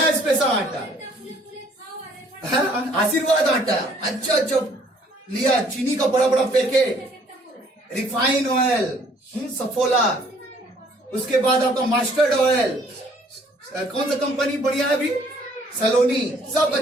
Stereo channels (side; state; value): both; normal; correlation 0.61